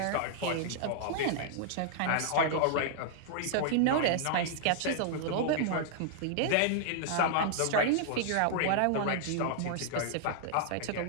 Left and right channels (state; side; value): different; both; correlation -0.01